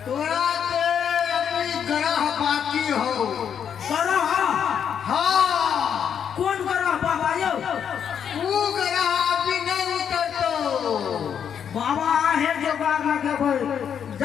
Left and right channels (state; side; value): quieter; right; 8.1 dB